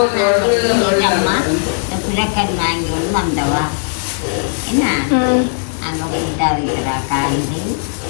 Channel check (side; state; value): right; silent; digital silence